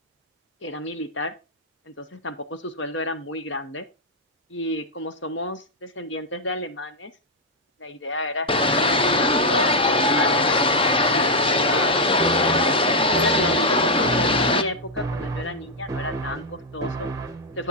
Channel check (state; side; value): normal; both; correlation -0.01